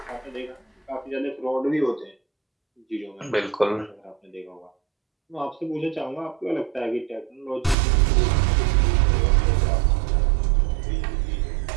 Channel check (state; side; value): drops out; left; at 7.8 s